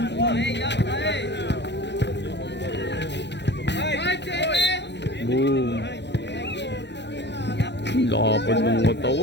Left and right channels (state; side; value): late; right; 0.51 ms